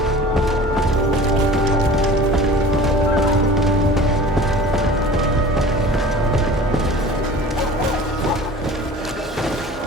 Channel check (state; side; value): normal; both; correlation 0.42